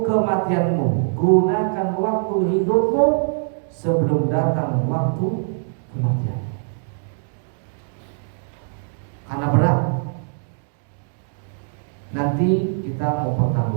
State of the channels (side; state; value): left; silent; digital silence